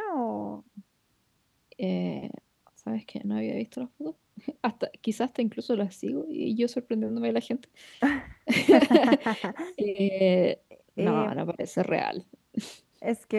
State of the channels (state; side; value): identical; both; correlation 1.00